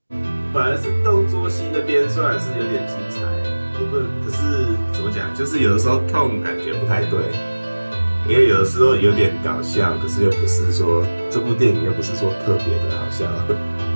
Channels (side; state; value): both; inverted; correlation -1.00